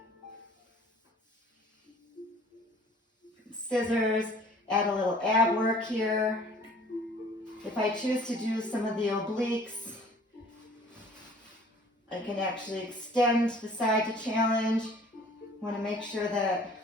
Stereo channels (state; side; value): normal; both; correlation 0.52